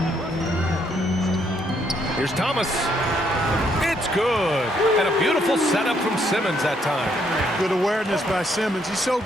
Here's Thomas. It's good. And a beautiful setup from Simmons that time. Good awareness by Simmons. He's so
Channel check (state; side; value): normal; both; correlation 0.72